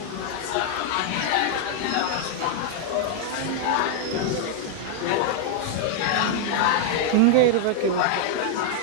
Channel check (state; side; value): different; both; correlation 0.00